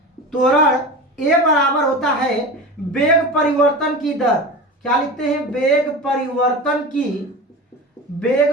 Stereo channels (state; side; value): normal; both; correlation 0.30